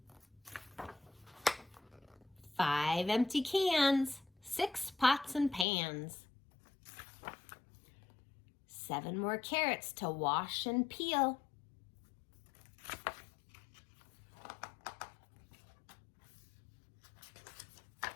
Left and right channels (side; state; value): right; drops out; at 5.7 s